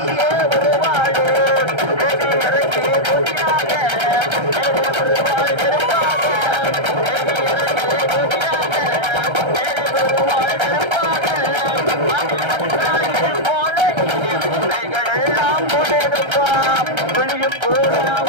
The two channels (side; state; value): left; late; 1.3 ms